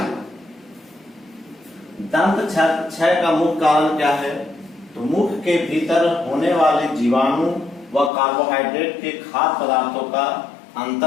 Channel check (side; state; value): right; drops out; at 8.1 s